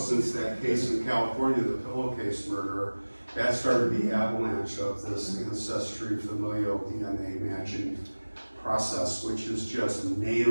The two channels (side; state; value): both; inverted; correlation -1.00